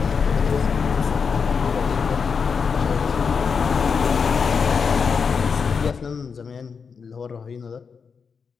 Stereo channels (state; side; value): quieter; right; 5.8 dB